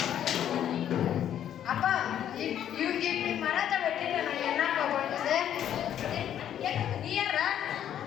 அப்பா இவங்க இப்படி மரத்தை வெட்டிட்டு நான் என்னப்பா பண்றது? நீ யாரா?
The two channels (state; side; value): quieter; right; 10.3 dB